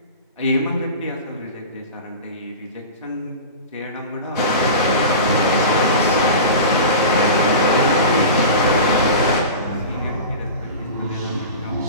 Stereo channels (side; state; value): both; inverted; correlation -0.32